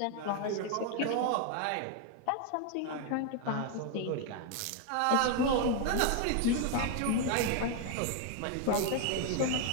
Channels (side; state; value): both; different; correlation 0.00